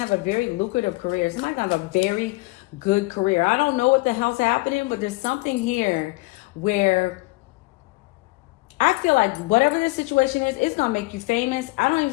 to have a very lucrative career. Somebody's going to have a very good career. I don't know what the hell's happening, but there's something here where I feel like whatever this situation is, it's going to make you famous. I don't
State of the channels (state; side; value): quieter; right; 23.6 dB